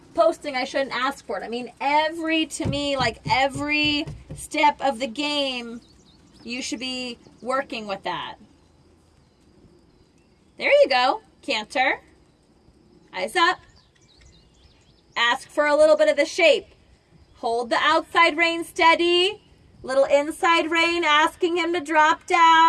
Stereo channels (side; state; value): both; identical; correlation 1.00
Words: posting, I shouldn't ask for it. I mean, every step of the game, you should be working with that. There you go. Canter. Eyes up. Ask for a little bit of the shape. Hold the outside rein steady. Little inside rein, asking him to drop